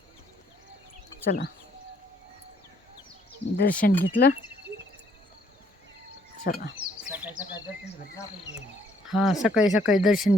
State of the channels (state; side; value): normal; both; correlation 0.67